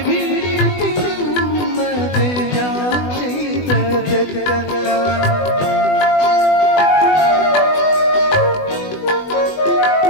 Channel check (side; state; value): right; late; 20 ms